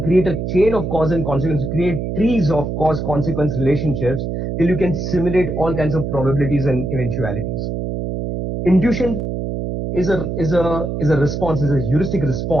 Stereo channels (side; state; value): right; noise; hum, 3 dB below the sound